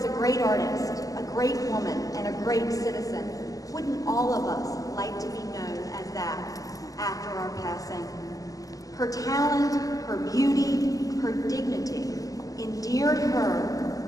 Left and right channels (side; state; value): right; late; 0.17 ms